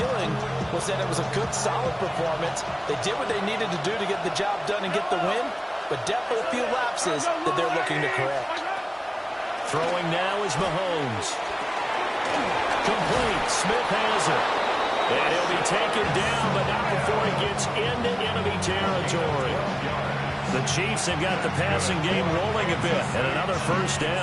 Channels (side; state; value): both; identical; correlation 1.00